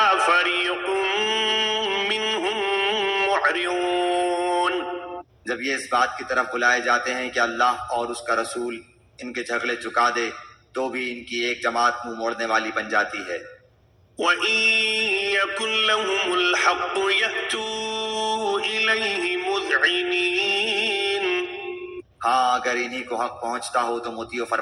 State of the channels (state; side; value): identical; both; correlation 1.00